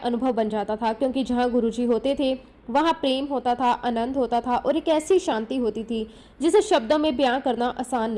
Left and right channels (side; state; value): both; identical; correlation 1.00